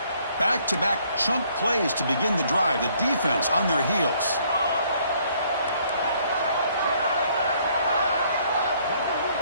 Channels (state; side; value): inverted; both; correlation -0.65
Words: Back-to-back chunk plays to begin the drive. The defense on their heels.